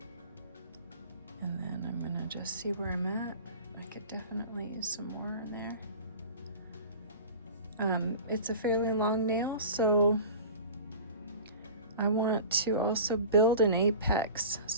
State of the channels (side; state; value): both; inverted; correlation -0.37